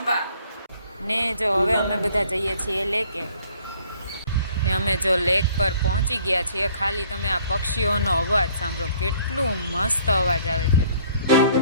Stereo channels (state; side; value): inverted; both; correlation -0.58